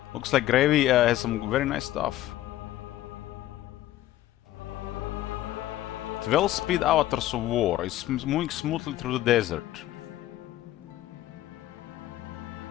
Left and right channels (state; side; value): quieter; right; 14.4 dB